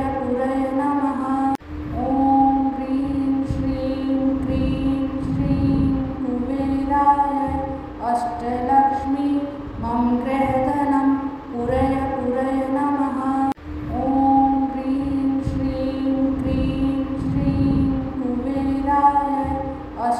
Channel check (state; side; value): identical; both; correlation 1.00